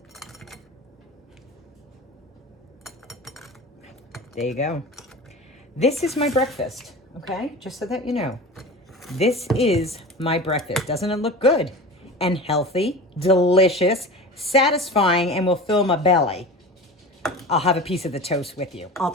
There you go. This is my breakfast, okay? Just so that you know. This is my breakfast. Doesn't it look good? And healthy, delicious, satisfying, and will fill my belly. I'll have a piece of the toast with you. I'll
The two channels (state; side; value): normal; both; correlation 0.33